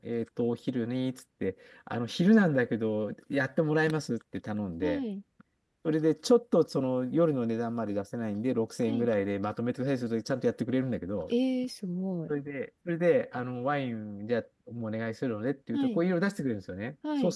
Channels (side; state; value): both; identical; correlation 1.00